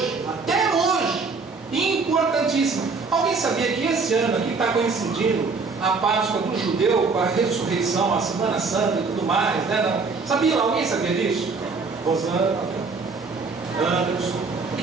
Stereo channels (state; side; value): quieter; left; 4.4 dB